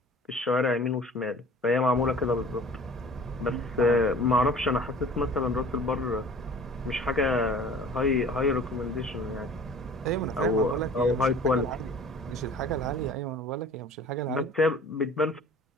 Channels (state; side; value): normal; both; correlation 0.46